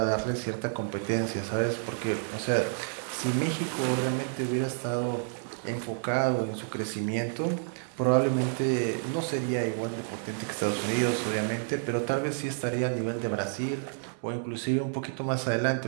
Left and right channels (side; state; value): left; silent; digital silence